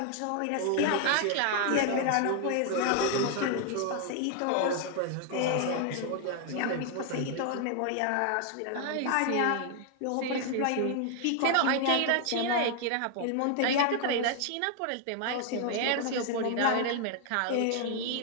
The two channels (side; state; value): both; different; correlation 0.00